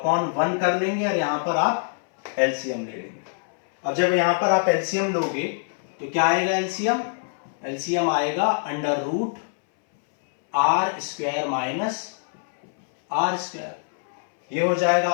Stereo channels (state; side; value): silent; right; 62 dB below the other